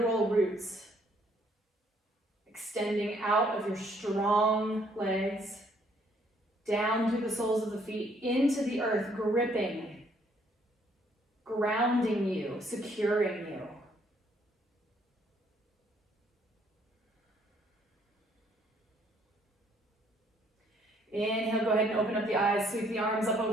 roots extending out of your strong legs, down through the soles of the feet, into the earth, gripping, grounding you, securing you. Inhale, go ahead and open up the eyes, sweep the arms up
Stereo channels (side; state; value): both; normal; correlation 0.66